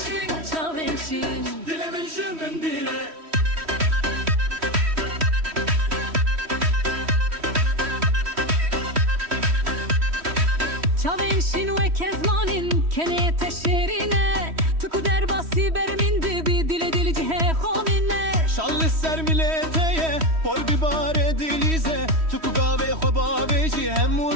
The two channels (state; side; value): late; left; 3.1 ms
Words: Çavenşin. dilimin şının bire. Çavenşin ve kezmanin kene teşerine tuku derbasi bermin dibi dile dili cihe khonine. Şallı ser milleteye Pol bibare dilize Tuku gave khobabeci Hem